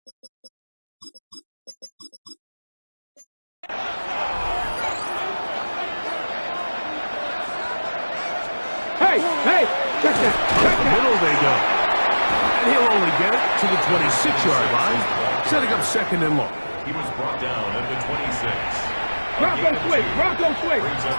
Hey, check that. Up the middle they go. And he'll only get it to the 26-yard line, setting up 2nd and long. He was brought down at the 26. Bronco swing, Bronco swing. Brings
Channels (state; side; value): inverted; both; correlation -1.00